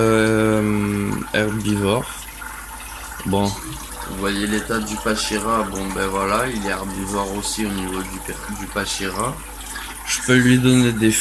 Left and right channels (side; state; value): both; identical; correlation 1.00